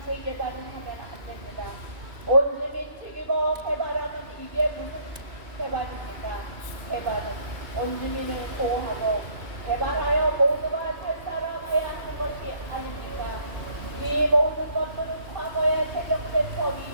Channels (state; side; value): late; left; 2.8 ms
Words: 재개발을 하면 안 됩니다. 온주민 죽이고 개발하면 이게 무슨 개발입니까? 개발은 온주민을 보호하고 개발하여 모두가 잘 살아가야 하는 것이 아닙니까? 이 모든 것들은 과거에 제정된 법이